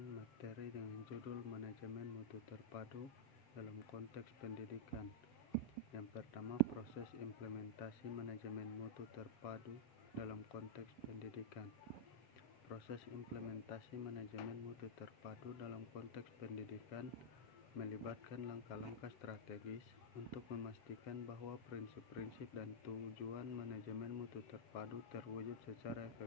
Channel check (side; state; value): right; late; 7.2 ms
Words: materi dengan judul manajemen mutu terpadu dalam konteks pendidikan. Yang pertama, proses implementasi manajemen mutu terpadu dalam konteks pendidikan. Proses implementasi manajemen mutu terpadu dalam konteks pendidikan melibatkan langkah-langkah strategis untuk memastikan bahwa prinsip-prinsip dan tujuan manajemen mutu terpadu terwujud secara